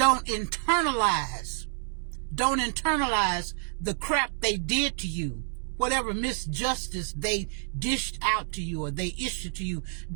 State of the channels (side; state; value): left; silent; 59 dB below the other